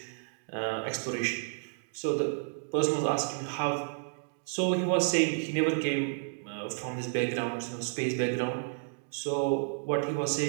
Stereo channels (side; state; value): left; silent; digital silence